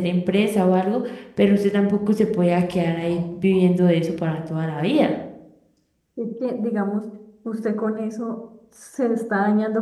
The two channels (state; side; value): identical; both; correlation 1.00